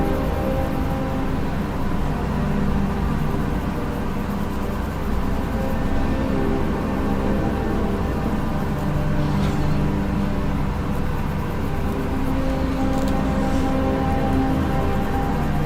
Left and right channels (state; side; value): identical; both; correlation 1.00